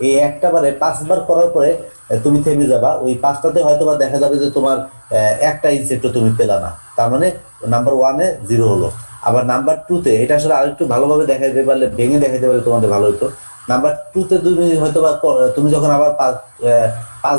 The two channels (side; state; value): both; inverted; correlation -1.00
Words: এই একটা বারে 5 বার করার পরে তুমি থেমে যাবা, ওই 5টাতে হয়তো বা দেখা যাবে যে তোমার একটা ইনসেক্টও তুমি পেলা না, তার মানে নাম্বার 1-এ 0 হলো। আবার নাম্বার 2-তে এটা আসলে আরেকটু ভালোভাবে দেখাইতে পারলে, ভেঙে দেখাইতে পারলে তোমাদের ভালো হতো। নাম্বার 2-তে তুমি হয়তো বা তুমি যখন আবার 5